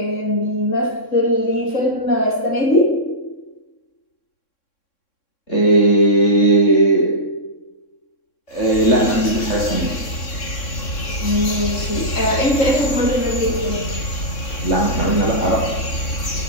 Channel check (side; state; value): right; late; 3.6 ms